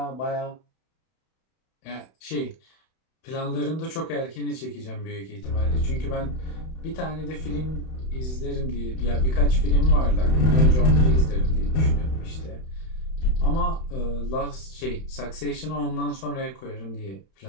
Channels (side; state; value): right; late; 31 ms